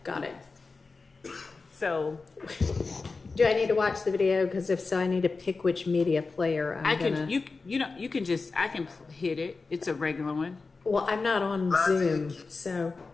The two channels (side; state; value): right; quieter; 4.1 dB